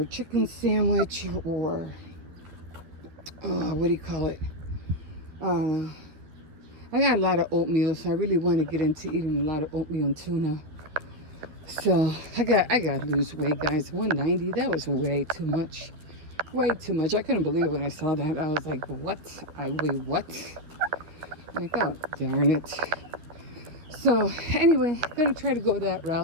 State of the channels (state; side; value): late; left; 12 ms